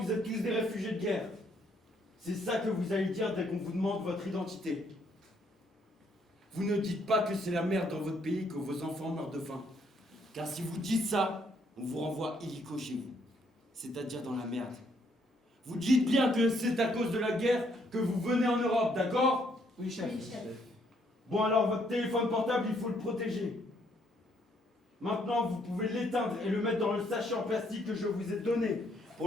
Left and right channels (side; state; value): both; normal; correlation 0.69